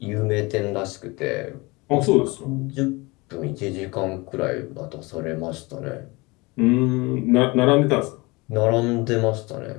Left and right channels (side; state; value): right; quieter; 24.6 dB